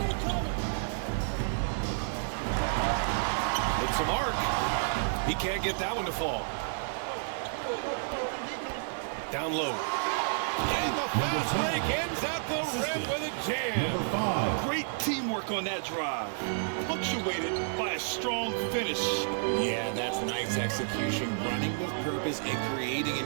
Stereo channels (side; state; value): left; silent; digital silence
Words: With some arc. He can't get that one to fall. Down low. And the fast break ends at the rim with a jam. Number 5. Great teamwork on that drive. Punctuated by a strong finish. Yeah, that's nice execution. Running with purpose and creating